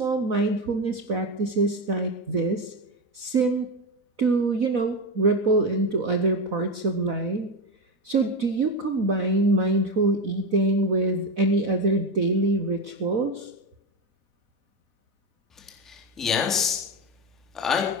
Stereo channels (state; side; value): normal; both; correlation 0.14